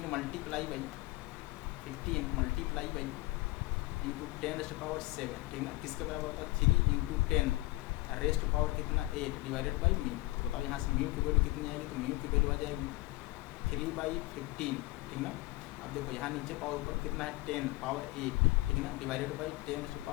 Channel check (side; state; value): right; quieter; 20.5 dB